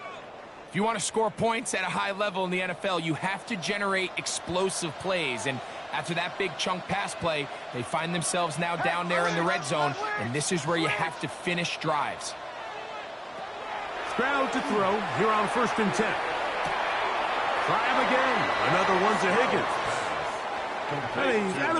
If you want to score points at a high level in the NFL, you have to generate explosive plays. And after that big chunk pass play, they find themselves now down there in the red zone, and this is where you have to finish drives. Stroud to throw here on 1st and 10. Try him again. Another one to Higgins. And he's out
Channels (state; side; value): identical; both; correlation 1.00